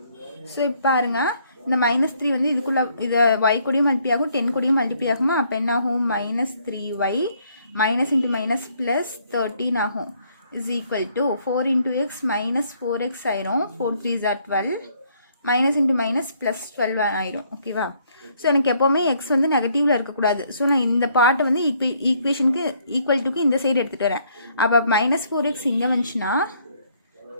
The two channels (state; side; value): inverted; both; correlation -0.67